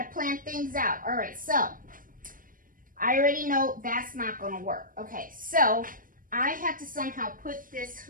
plan things out. All right, so I already know that's not gonna work. Okay, so I have to somehow put this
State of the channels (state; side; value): late; left; 0.40 ms